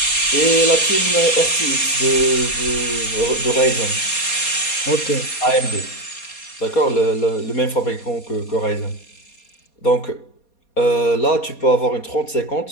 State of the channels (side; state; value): right; late; 4.2 ms